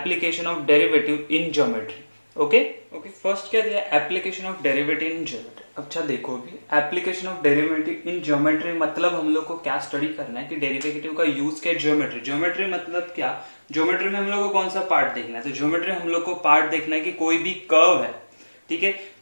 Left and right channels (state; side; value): inverted; both; correlation -1.00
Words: of derivative in geometry, okay. First क्या दिया, application of derivative in geometry. अच्छा देखो, अभी application of derivative in geometry मतलब हम लोग को क्या स्टडी करना है कि डेरिवेटिव का यूज क्या है ज्योमेट्री। ज्योमेट्री मतलब क्या, ज्योमेट्री में हम लोग को कौन सा पार्ट देखना है, तो ज्योमेट्री हम लोग को पार्ट देखना है कि कोई भी कर्व है, ठीक है,